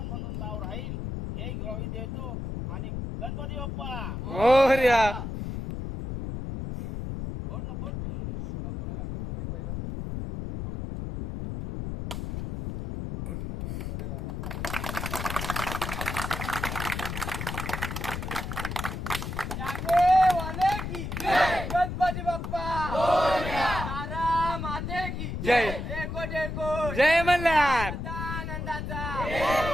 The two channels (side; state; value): left; noise; rumble, 5 dB below the sound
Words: म्हणून नाव राहील, हे ग्वाही देतो. आणि गणपती बाप्पा मोरया. फोड ना, फोड. गणपती बाप्पा तारा माते की जय. एको जय मल्हार. आनंदाचा